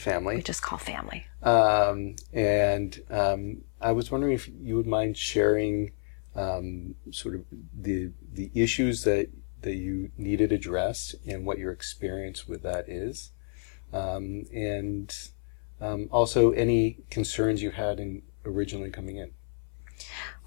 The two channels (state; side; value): silent; right; 58 dB below the other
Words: We just call family. I was wondering if you would mind sharing sort of the issues that you needed addressed and what your experience with that is. Also any concerns you had in originally coming in.